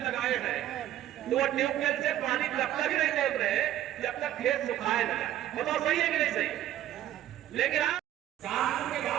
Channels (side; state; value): left; quieter; 12.6 dB